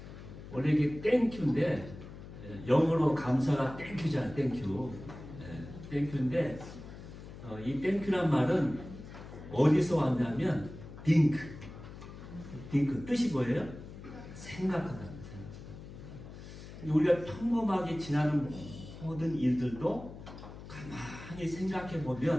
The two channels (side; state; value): left; noise; hum, 14 dB below the sound